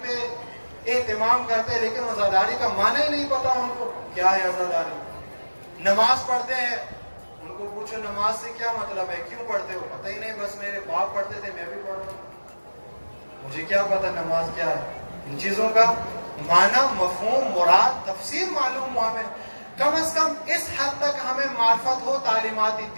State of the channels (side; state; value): both; inverted; correlation -1.00